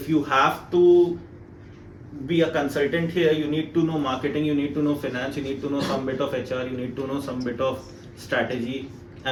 you have to be a consultant here, you need to know marketing, you need to know finance, you need to know some bit of HR, you need to know some bit of strategy,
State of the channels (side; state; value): both; identical; correlation 1.00